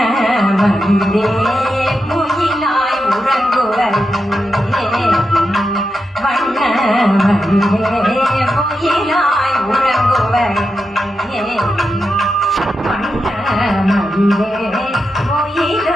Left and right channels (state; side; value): normal; both; correlation 0.88